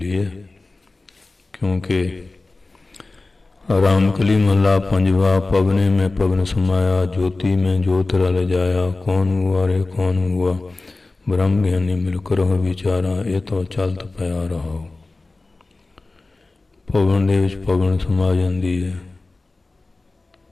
ਹੈ। ਕਿਉਂਕਿ ਰਾਮ ਕਲੀ ਮਹਲਾ ਪੰਜਵਾ। ਪਵਨੇ ਮੈਂ ਪਵਨ ਸਮਾਇਆ, ਜੋਤੀ ਮੈਂ ਜੋਤ ਰਲ ਜਾਇਆ। ਕੌਣ ਹੁਆ ਰੇ ਕੌਣ ਹੁਆ, ਬ੍ਰਹਮ ਗਿਆਨੀ ਮਿਲ ਕਰਹੁ ਵਿਚਾਰਾ। ਇਹ ਤਾਂ ਚਲਤ ਪਿਆ ਰਹਾਓ। ਪਵਨ ਦੇ ਵਿੱਚ ਪਵਨ ਸਮਾ ਜਾਂਦੀ ਹੈ,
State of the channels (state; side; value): quieter; right; 3.3 dB